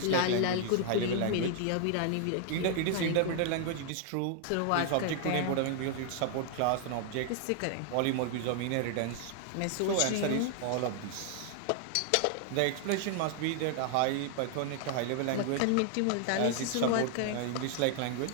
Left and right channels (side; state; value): both; different; correlation 0.00